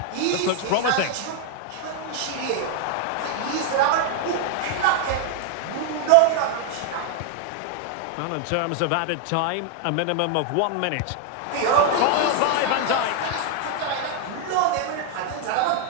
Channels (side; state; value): both; different; correlation 0.00